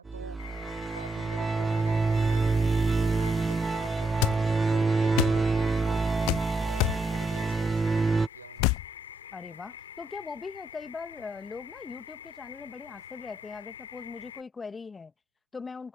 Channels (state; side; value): normal; both; correlation 0.79